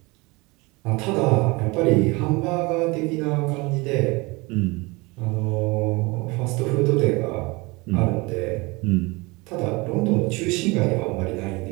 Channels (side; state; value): left; quieter; 25.0 dB